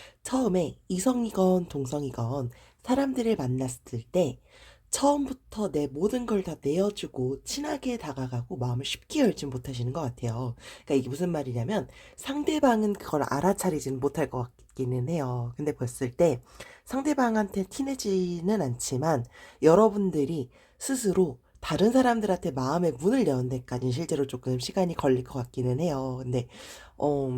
처음에 이성이건 동성이건 사람들을 만났을 때 처음부터 내 모든 걸 다 내어주고 친하게 다가가고 마음을 쉽게 열진 못하시는 것 같아요. 그러니까 이게 무슨 말이냐면 상대방은 그걸 알아차리지는 못할 것 같기는 해요. 근데 봤을 때 상대방한테 티내지는 않지만 여러분들이 스스로 다른 사람들한테 마음의 문을 여는 데까지는 실제로 조금 시간이 걸릴 것 같기는 해요. 근데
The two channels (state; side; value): identical; both; correlation 1.00